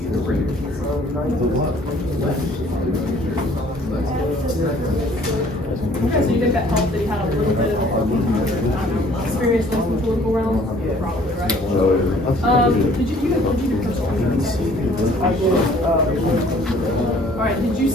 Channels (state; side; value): normal; both; correlation 0.56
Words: so you think that helped that he had a little bit of experience in the political realm? Probably, right? Did you do personal finance? Alright, did you